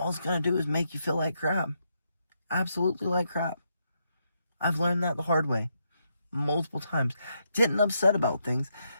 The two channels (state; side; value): inverted; both; correlation -0.79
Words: it's going to do is make you feel like crap. Absolutely like crap. I've learned that the hard way. Multiple times. Getting upset about things